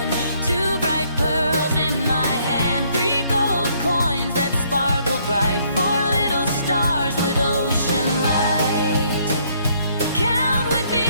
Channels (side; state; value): both; inverted; correlation -0.67